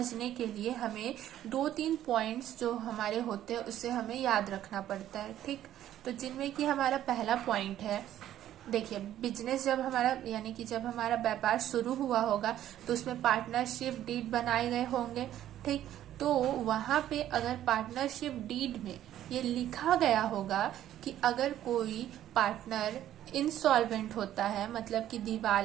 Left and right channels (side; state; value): left; quieter; 12.1 dB